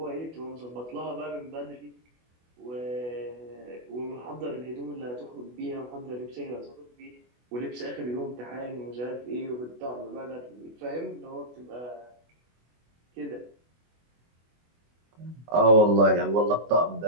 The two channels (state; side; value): late; left; 24 ms